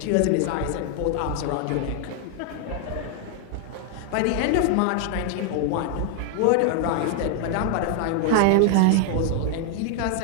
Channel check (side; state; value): both; different; correlation 0.00